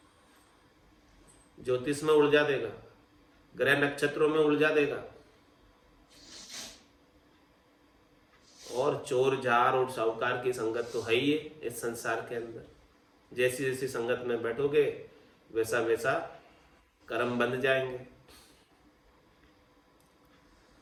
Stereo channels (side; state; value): both; identical; correlation 1.00